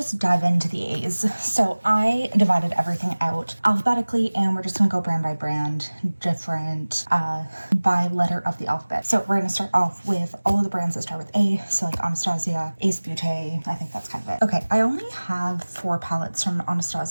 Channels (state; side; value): inverted; both; correlation -1.00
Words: dive into the A's. So I divided everything out alphabetically, and we're just gonna go brand by brand, different by letter of the alphabet. So we're gonna start off with all of the brands that start with A, so like Anastasia, Ace Beauté, I think that's kind of it. Okay, I only have 4 palettes from